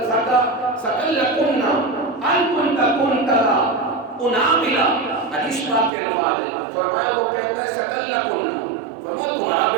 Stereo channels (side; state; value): left; drops out; at 5.9 s